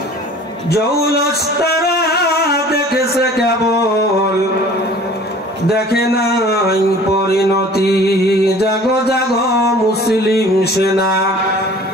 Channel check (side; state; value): both; normal; correlation 0.47